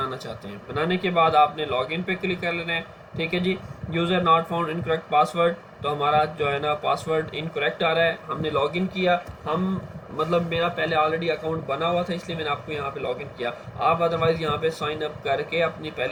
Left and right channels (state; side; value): identical; both; correlation 1.00